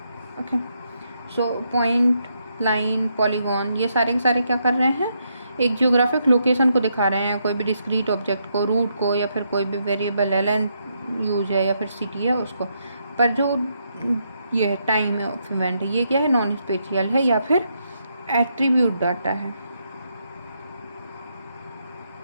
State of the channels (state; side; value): inverted; both; correlation -0.78